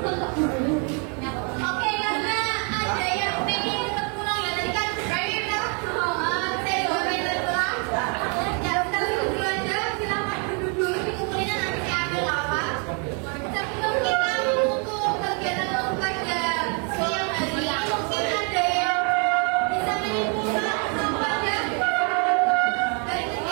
karena ada yang pengen tetap pulang ya tadi kan saya juga pengen pulang. Ya kita duduk aja, silakan duduk dulu dikumpulin nanti saya ambil apa. Sebelum kita untuk kegiatan pada siang hari ini mungkin ada yang bisa menyimpulkan apa aja dari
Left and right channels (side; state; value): left; quieter; 37.4 dB